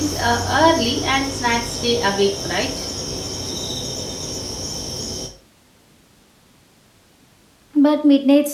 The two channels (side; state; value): both; identical; correlation 1.00